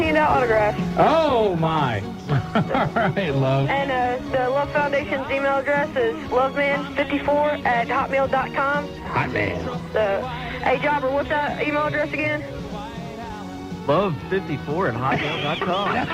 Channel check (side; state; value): both; identical; correlation 1.00